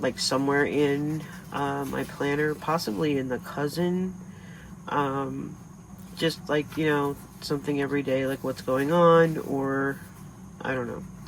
somewhere in my planner, possibly in the cousin, just like, you know, something every day, like what's going on, or I don't know,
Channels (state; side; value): identical; both; correlation 1.00